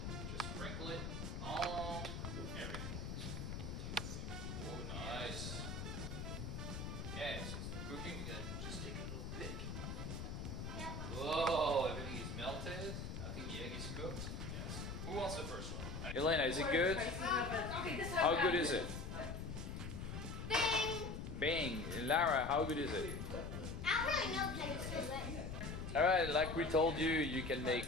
Just sprinkle it on everything. Oh, nice. Okay, so it's cooking. We're going to just take a little bit. Whoa, everything is melted. I think the egg is cooked. Yes. Who wants the first one? Elena, is it good? How good is it? Bang! Bang! Lara, how good is it? I don't really know because it's so good. Alright, like we told you, you can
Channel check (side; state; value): left; noise; rumble, 5 dB below the sound